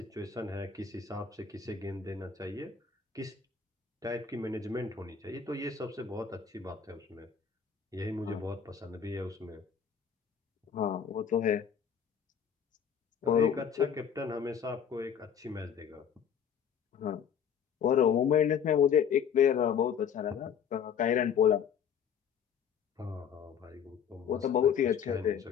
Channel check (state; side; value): quieter; right; 7.6 dB